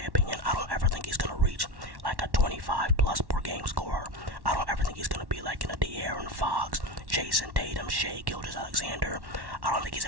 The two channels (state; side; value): late; left; 1.1 ms